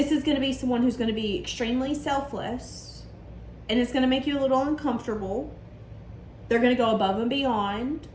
is going to be someone who's going to be extremely selfless, and it's going to make you a little uncomfortable. They're going to go above and beyond.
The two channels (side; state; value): both; identical; correlation 1.00